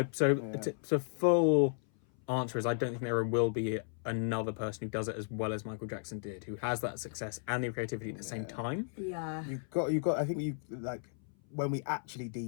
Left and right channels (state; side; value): silent; right; 55 dB below the other